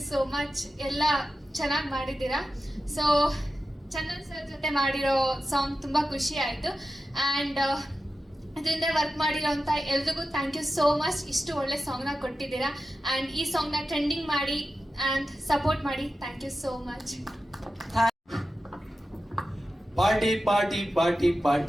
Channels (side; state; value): both; normal; correlation 0.92